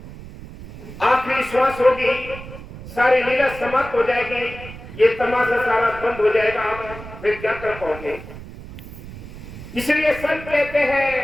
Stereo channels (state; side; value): noise; right; rumble, 14 dB below the sound